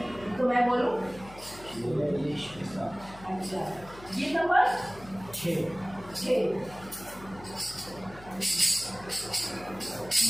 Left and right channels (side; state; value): left; noise; hum, 19 dB below the sound